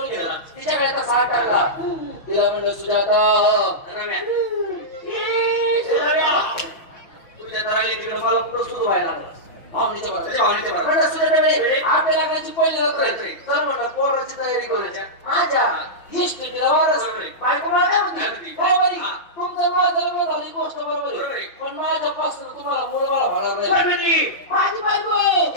गेला. तिच्याकडे आता 60 टाकला. तिला म्हणलं सुजाता तुझ्या तराली तिकडे मला कुठं सुरू व्हायला लागलं. आपल्या लग्नाची पहिली रात्र तर म्हणलं पोराची तयारी करायच्या. माझ्या हिस्ट्रीला वारस बायको मला काय म्हणते बरोबर तुमचं माझं लग्न झाली गोष्ट बरोबर आहे. पण माझ्यापासून तुम्हाला मुलं बाळा होणार नाही. माझी बायको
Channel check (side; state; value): right; late; 5.8 ms